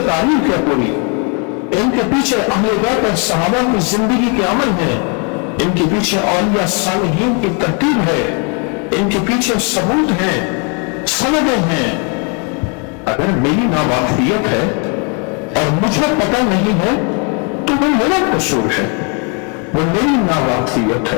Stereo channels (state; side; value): quieter; right; 36.3 dB